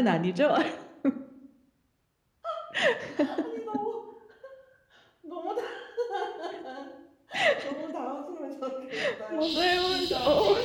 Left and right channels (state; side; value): identical; both; correlation 1.00